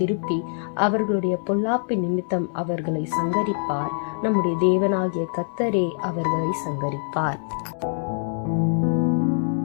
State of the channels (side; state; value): right; silent; digital silence